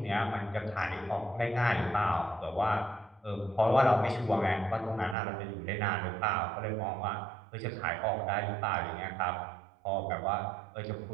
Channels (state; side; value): drops out; left; at 5.2 s